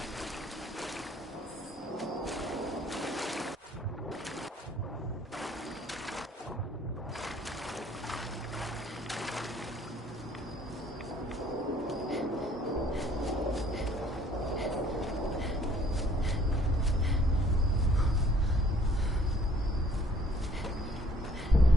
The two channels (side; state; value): both; normal; correlation 0.59